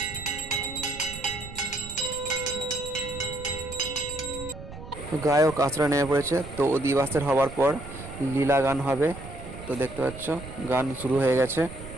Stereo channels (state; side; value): noise; right; rumble, 13 dB below the sound